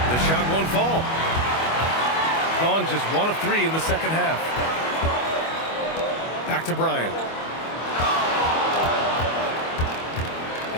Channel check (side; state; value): right; late; 25 ms